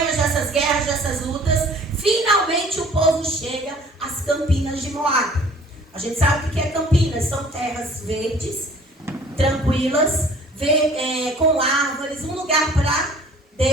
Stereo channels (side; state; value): both; normal; correlation 0.52